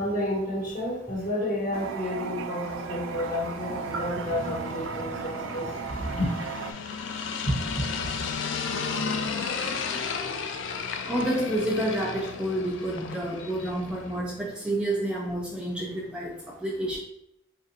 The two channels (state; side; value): normal; both; correlation 0.41